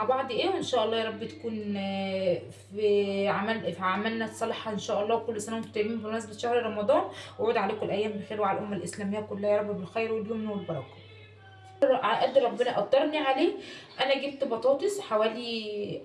بعض ايه، وان شاء الله يا رب تكون في عملنا صالحه ان شاء الله. وكل سنه وانتم طيبين بمناسبه شهر رمضان، وعود عليكم الايام بخير وعلى الامه الاسلاميه كلها يا رب بالخير واليمن والبركه على قد ربنا قدرني عليه. انا جبت بطاطس حوالي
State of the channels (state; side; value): identical; both; correlation 1.00